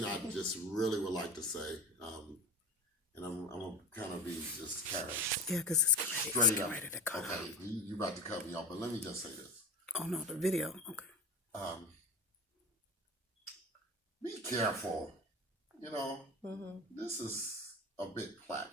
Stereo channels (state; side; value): normal; both; correlation 0.30